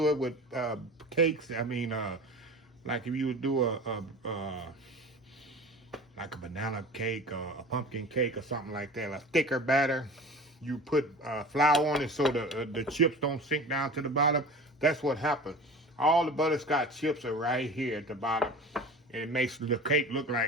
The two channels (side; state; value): both; normal; correlation 0.37